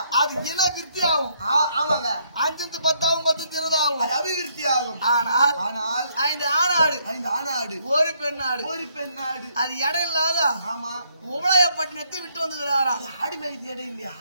அது இன விருத்தி ஆகும். ஆமாங்க. 5 10 ஆகும் 10 20 ஆகும். அது அபிவிருத்தி ஆகும். ஆனால் ஆனால் 5 ஆணாடு 5 ஆணாடு ஒரு பெண்ணாடு. ஒரு பெண்ணாடு. அது இடம் இல்லாத ஆமா. உபலாயப்பட்டினத்தை விட்டு வந்துக்கிறாரா. ஆடு மேய்க்கு இடம் இல்லையா?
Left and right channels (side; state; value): both; inverted; correlation -0.70